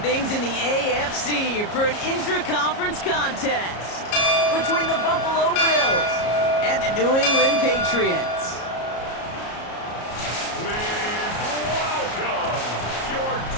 in the AFC for an intra-conference contest between the Buffalo Bills and the New England Patriots.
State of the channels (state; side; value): late; right; 34 ms